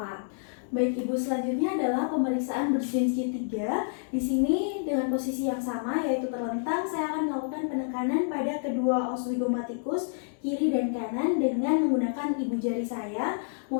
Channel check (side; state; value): right; silent; digital silence